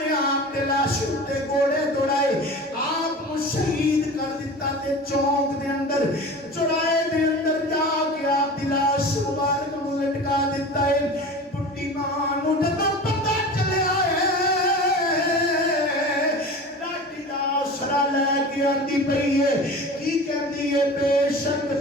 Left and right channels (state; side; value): normal; both; correlation 0.35